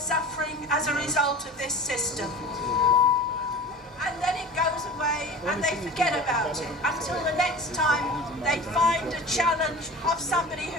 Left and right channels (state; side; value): normal; both; correlation 0.36